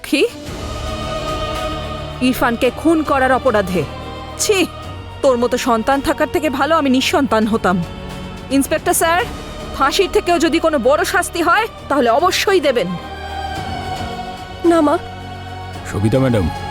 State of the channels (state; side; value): identical; both; correlation 1.00